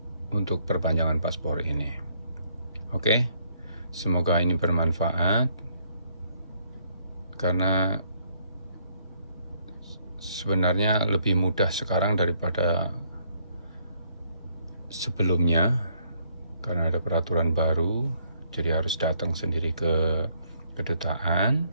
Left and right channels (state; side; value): inverted; both; correlation -0.68